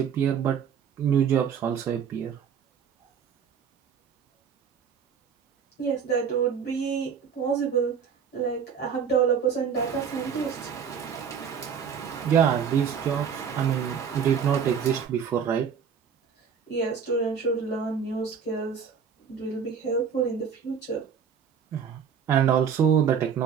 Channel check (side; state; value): left; quieter; 7.2 dB